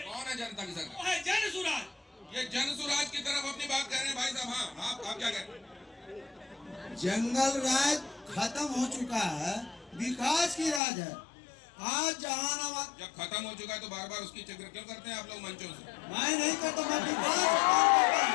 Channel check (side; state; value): right; drops out; at 10.8 s